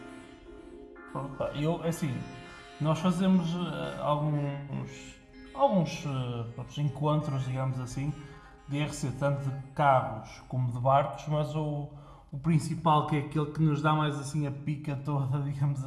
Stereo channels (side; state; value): both; identical; correlation 1.00